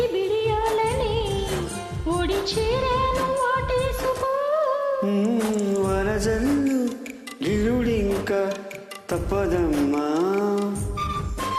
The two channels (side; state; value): both; identical; correlation 1.00